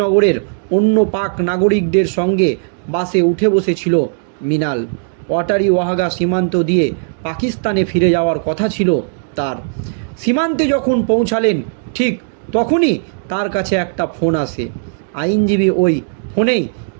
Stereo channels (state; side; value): silent; left; digital silence